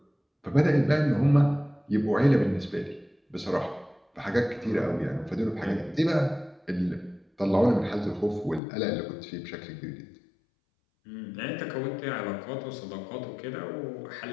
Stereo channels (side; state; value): right; drops out; at 8.6 s